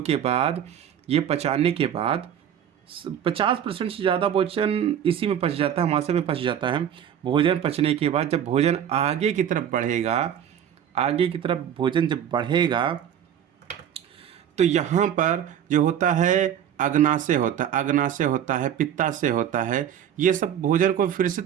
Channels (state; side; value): quieter; left; 9.5 dB